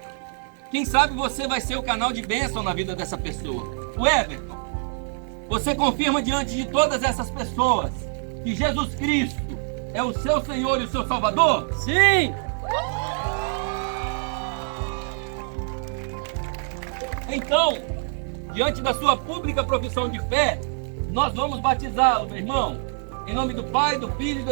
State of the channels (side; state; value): left; silent; 58 dB below the other